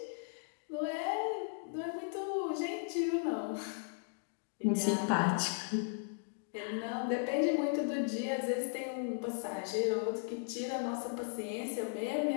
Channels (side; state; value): right; silent; digital silence